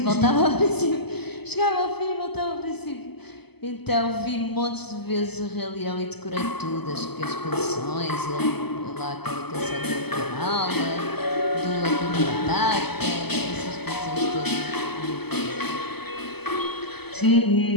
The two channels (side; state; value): right; late; 0.97 ms